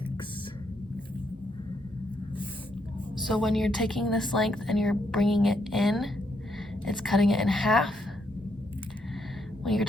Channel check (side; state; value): both; normal; correlation 0.76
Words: So when you're taking this length and you're bringing it in, it's cutting it in half. When you're